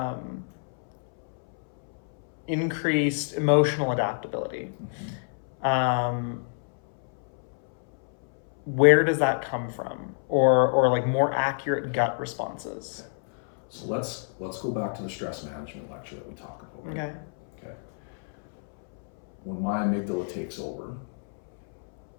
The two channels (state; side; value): silent; right; 60 dB below the other